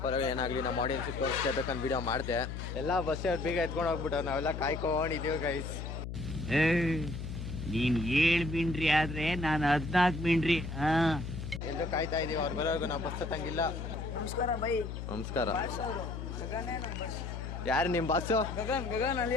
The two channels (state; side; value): noise; left; hum, 6 dB below the sound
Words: ಪರವಾಗಿ ಏನಾಗಲಿ ನಮ್ಮ ಆಡಿಯನ್ಸಿಗೆ ತೋರಿಸ್ಬೇಕಂತ ವಿಡಿಯೋ ಮಾಡಿದೆ. ಎಲ್ಲ ಬಸ್ ಬೇಗ ಎತ್ಕೊಂಡು ಹೋಗ್ಬಿಟ್ಟು ನಾವೆಲ್ಲ ಕಾಯ್ಕೊಂಡಿದ್ದೀವಿ ಗೈಸ್. ನೀನ್ 7 ಮಿಂಡ್ರಿ ಆದ್ರೆ ನಾನು 14 ಮಿಂಡ್ರಿ. ಎಲ್ಲರೂ ಕಾಯ್ತಾ ಇದೀವಿ. ಅವ್ರು ಬರೋರ್ಗು ನಾವು ಬಸ್ ಹತ್ತಂಗಿಲ್ಲ. ನಮಸ್ಕಾರ ಬೈ. ನಮಸ್ಕಾರ. ಯಾರು ನಿಮ್ಮ ಬಾಸು? ಗಗನ್